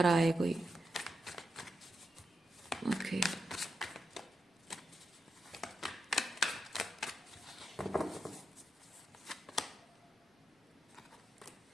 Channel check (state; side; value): normal; both; correlation 0.86